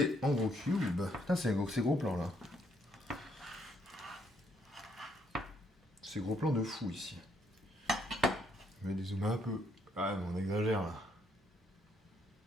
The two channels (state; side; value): normal; both; correlation 0.71